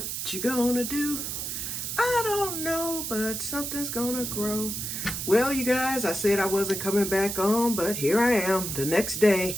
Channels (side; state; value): right; noise; hiss, 4 dB below the sound